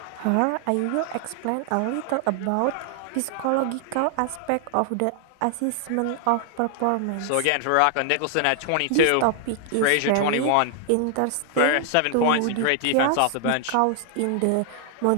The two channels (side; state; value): both; different; correlation 0.00